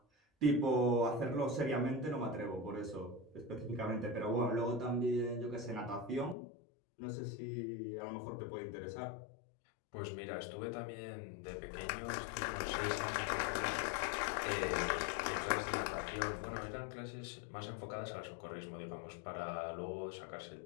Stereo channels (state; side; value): drops out; right; at 6.4 s